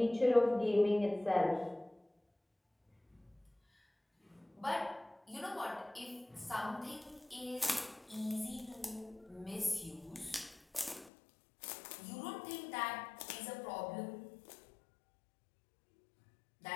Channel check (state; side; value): drops out; right; at 11.1 s